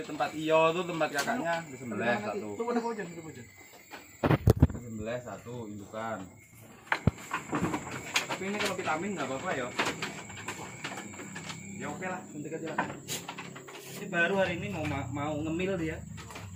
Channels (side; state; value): both; identical; correlation 1.00